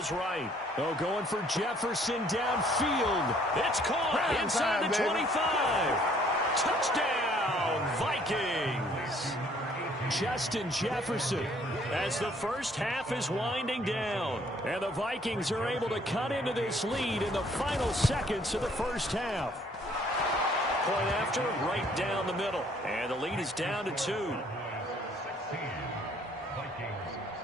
right. Oh, going for Jefferson downfield. It's caught inside the 25. Touchdown, Vikings. Justin Jefferson as the first half is winding down. And the Vikings are able to cut into this lead in the final seconds of the first half. Point after, right down the middle. And the lead is down to 2.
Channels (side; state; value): both; normal; correlation 0.62